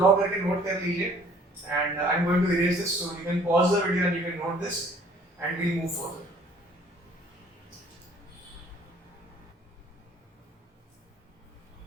करके नोट कर लीजिए. And I'm going to erase this, so you can pause the video and you can note this, and we'll move forward.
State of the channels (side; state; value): both; normal; correlation 0.56